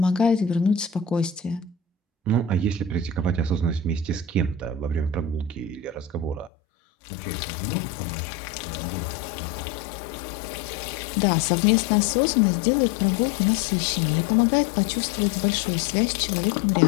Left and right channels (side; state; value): right; drops out; at 6.5 s